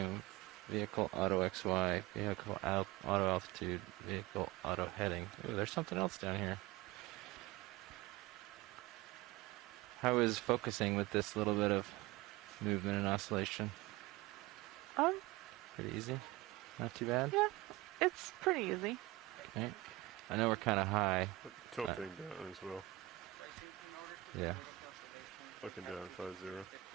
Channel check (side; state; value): left; quieter; 18.5 dB